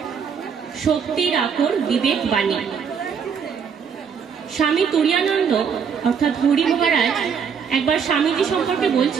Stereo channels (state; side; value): quieter; left; 6.7 dB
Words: শক্তির আকর বিবেক বাণী। স্বামী তুরীয়ানন্দ অর্থাৎ হরি মহারাজ একবার স্বামীজি সম্পর্কে